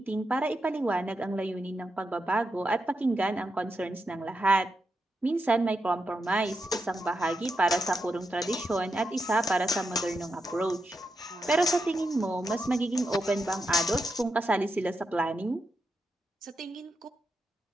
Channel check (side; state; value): both; normal; correlation 0.85